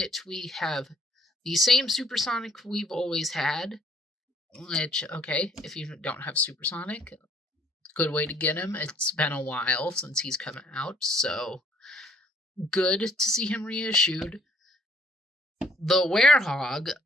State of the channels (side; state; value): both; normal; correlation 0.61